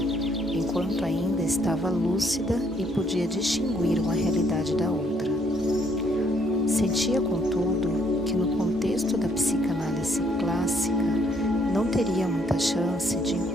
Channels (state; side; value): normal; both; correlation 0.67